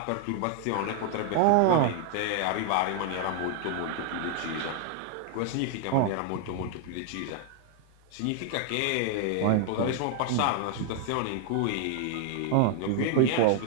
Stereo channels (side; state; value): both; different; correlation 0.00